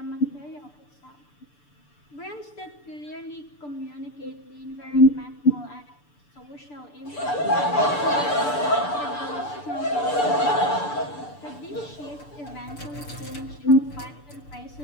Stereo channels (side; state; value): right; late; 6.8 ms